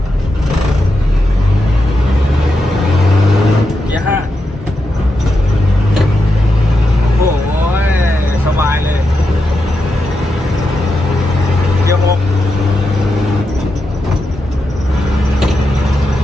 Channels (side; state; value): both; normal; correlation 0.86